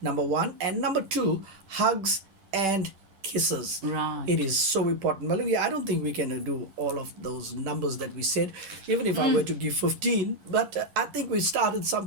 one. And number two, hugs and kisses. Right. It is so important. Malungi, I don't think we can do all of those numbers that we said, even if I were to give 15. But I think we started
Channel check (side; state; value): left; late; 10 ms